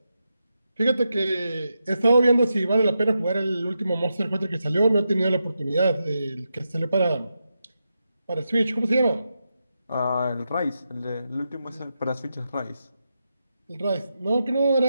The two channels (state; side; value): inverted; both; correlation -0.87